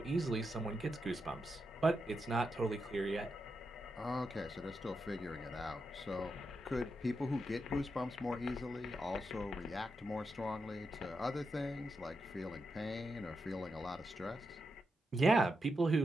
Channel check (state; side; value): normal; both; correlation 0.85